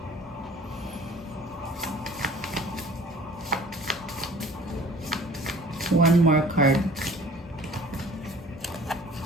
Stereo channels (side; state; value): both; normal; correlation 0.48